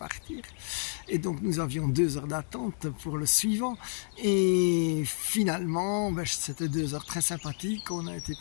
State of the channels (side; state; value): right; silent; digital silence